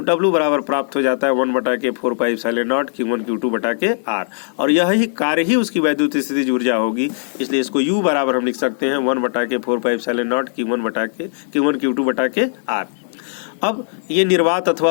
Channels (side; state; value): right; silent; digital silence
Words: W बराबर प्राप्त हो जाता है 1/4πε0 Q1 Q2 R, और यही कार्य ही उसकी वैद्युत स्थितिज ऊर्जा होगी, इसलिए इसको U बराबर हम लिख सकते हैं 1/4πε0 Q1 Q2 R। अब ये निर्वात